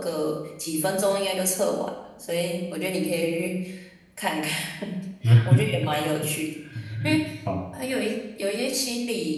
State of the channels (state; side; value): identical; both; correlation 1.00